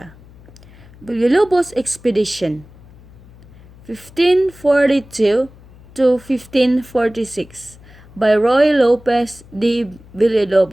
Villalobos expedition 1542 to 1546 by Roy Lopez de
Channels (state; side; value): noise; left; hum, 23 dB below the sound